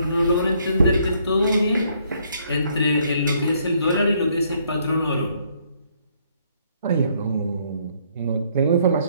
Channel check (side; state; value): both; inverted; correlation -0.68